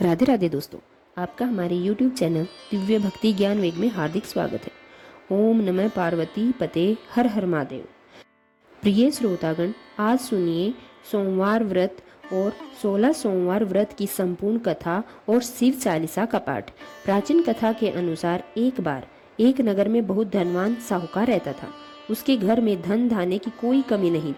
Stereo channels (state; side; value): identical; both; correlation 1.00